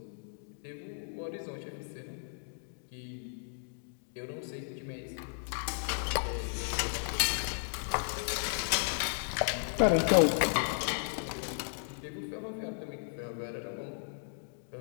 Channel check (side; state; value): right; silent; digital silence